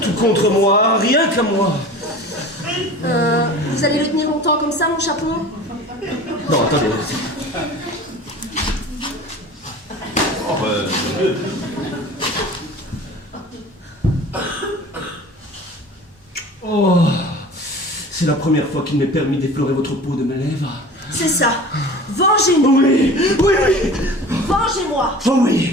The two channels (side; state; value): both; normal; correlation 0.39